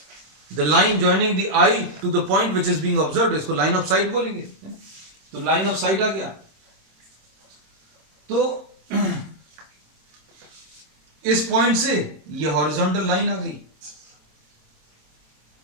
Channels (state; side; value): late; left; 26 ms